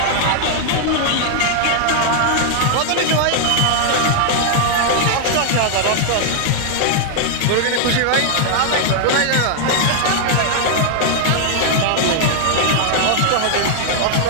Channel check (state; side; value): different; both; correlation 0.00